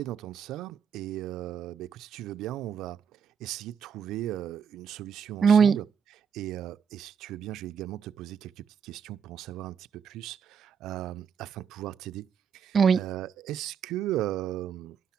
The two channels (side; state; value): left; quieter; 7.1 dB